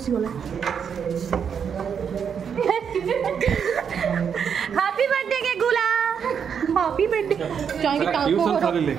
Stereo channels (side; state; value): left; quieter; 7.3 dB